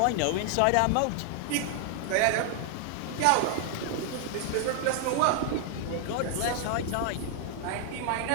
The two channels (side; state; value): both; different; correlation 0.00